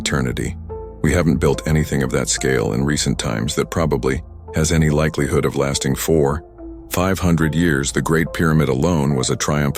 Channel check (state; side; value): identical; both; correlation 1.00